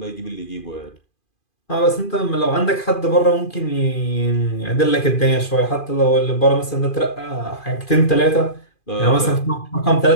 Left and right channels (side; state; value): right; late; 2.5 ms